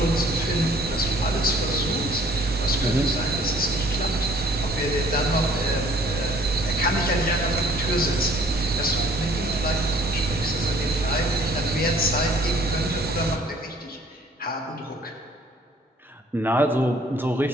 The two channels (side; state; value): both; normal; correlation 0.56